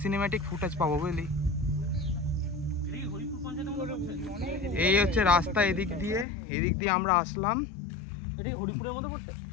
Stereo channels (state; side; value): drops out; right; at 6.2 s